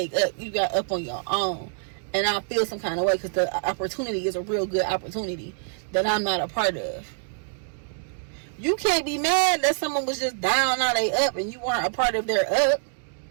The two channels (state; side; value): silent; left; digital silence